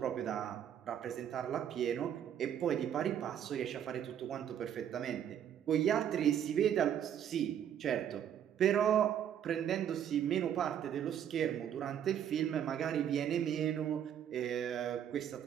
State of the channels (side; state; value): left; quieter; 9.6 dB